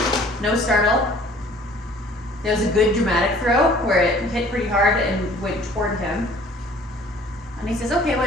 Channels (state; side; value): normal; both; correlation 0.53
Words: No startle. There was a good dramatic throw where it hit pretty hard and went toward him. And he says, okay,